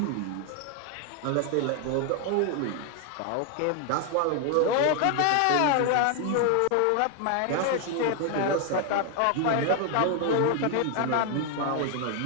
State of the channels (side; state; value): both; different; correlation 0.00